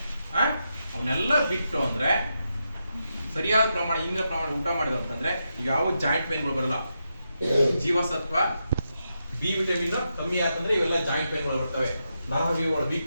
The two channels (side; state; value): both; inverted; correlation -0.85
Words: ಅವನ್ನೆಲ್ಲ ಬಿಟ್ಟು ಅಂದ್ರೆ ಸರಿಯಾದ ಪ್ರಮಾಣ, ಇಂದಿನ ಪ್ರಮಾಣ ಊಟ ಮಾಡಿದ ಅಂತಂದ್ರೆ ಯಾವ ಜಾಯಿಂಟ್ ಪೈನ್ಗಳು ಬರಲ್ಲ. ಜೀವಸತ್ವ ಬಿ ವಿಟಮಿನ್ ಕಮ್ಮಿ ಆತಂದ್ರೆ ಇವೆಲ್ಲ ಜಾಯಿಂಟ್ ಪೈನ್ಗಳು ಬರ್ತವೆ, ನರವ್ಯೂಹಗಳು